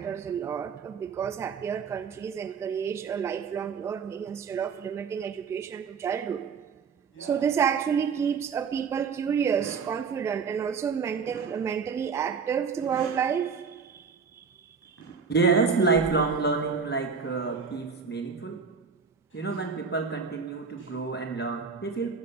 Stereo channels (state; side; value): quieter; left; 5.7 dB